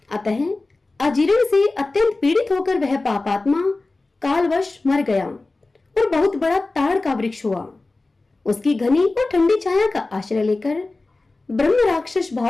अतः अजीर्ण से अत्यंत पीड़ित होकर वह पापात्मा कालवश मर गया और बहुत बड़ा ताड़ का वृक्ष हुआ। उसकी घनी और ठंडी छाया का आश्रय लेकर ब्रह्म राक्षस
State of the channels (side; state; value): right; quieter; 3.3 dB